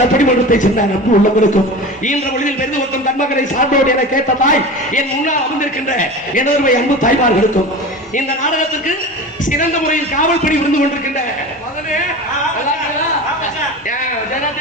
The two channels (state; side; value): normal; both; correlation 0.32